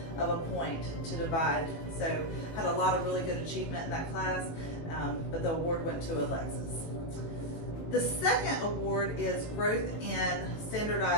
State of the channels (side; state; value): right; late; 18 ms